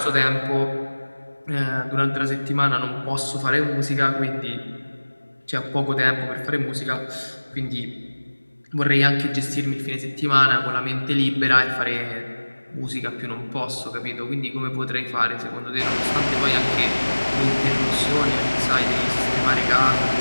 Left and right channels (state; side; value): inverted; both; correlation -1.00